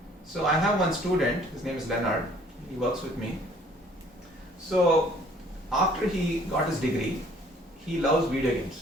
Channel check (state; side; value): normal; both; correlation 0.57